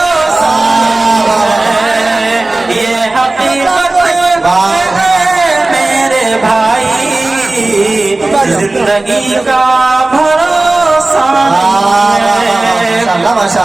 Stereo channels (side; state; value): left; quieter; 3.0 dB